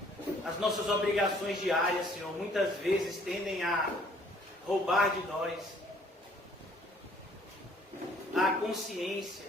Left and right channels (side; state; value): both; normal; correlation 0.59